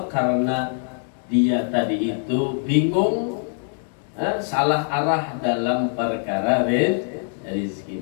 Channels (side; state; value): right; silent; 59 dB below the other